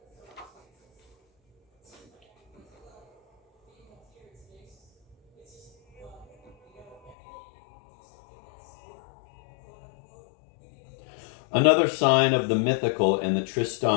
Another sign of the mythical in the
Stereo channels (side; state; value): right; drops out; at 7.2 s